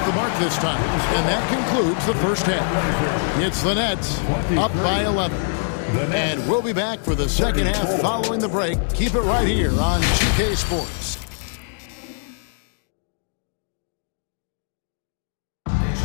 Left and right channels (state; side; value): silent; right; digital silence